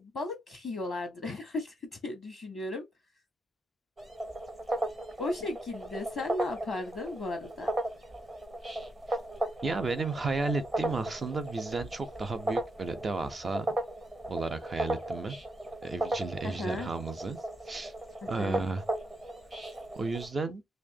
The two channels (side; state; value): both; normal; correlation 0.81